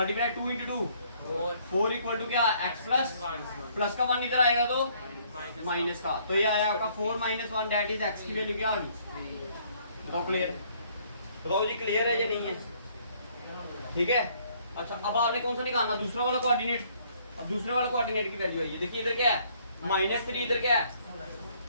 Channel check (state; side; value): inverted; both; correlation -0.64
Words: 2 × 2 4 = क्या? x प्लस का 1 इधर आएगा तो माइनस का। तो ये आया आपका 4 - 1, दैट इज x की वैल्यू क्या आ गई? बताओ क्लियर है? बताओ जी क्लियर है या नहीं है? ठीक है। अच्छा अब आपने कौन सा निकालना? दूसरा वाला कोऑर्डिनेट। अब दूसरे वाला कोऑर्डिनेट की वैल्यू है, देखिए इधर क्या है? -3, इधर क्या है?